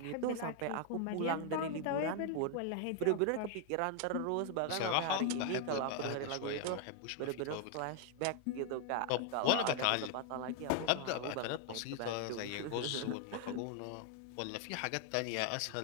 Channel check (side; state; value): both; different; correlation 0.00